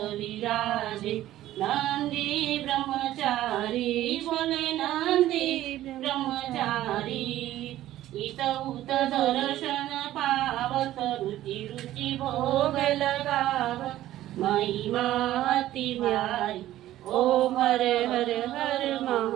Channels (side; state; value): left; quieter; 14.1 dB